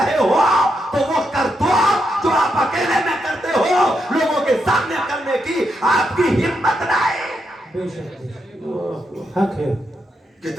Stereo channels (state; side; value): normal; both; correlation 0.82